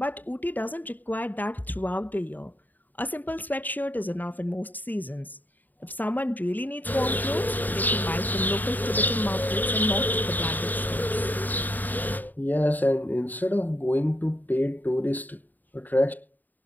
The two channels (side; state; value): right; late; 0.086 ms